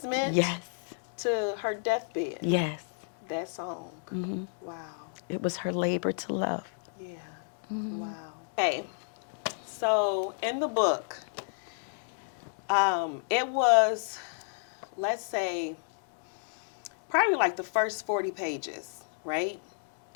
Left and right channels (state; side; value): silent; right; digital silence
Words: Yes. To her deathbed. Yes. That song. Wow. It was her labor to love. Yeah. Wow. Okay. So in the book, it was, let's say, probably like the first 40 pages, right?